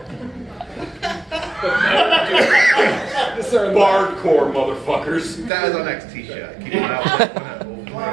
Bardcore motherfuckers. That is our next t-shirt. Keep it out. If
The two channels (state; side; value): drops out; left; at 5.5 s